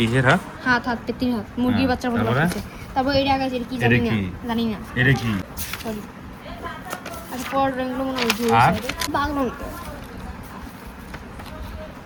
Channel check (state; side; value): identical; both; correlation 1.00